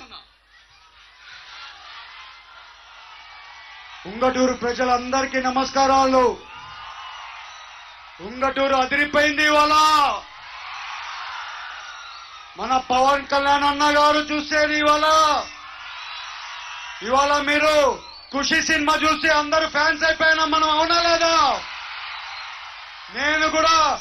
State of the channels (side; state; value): both; identical; correlation 1.00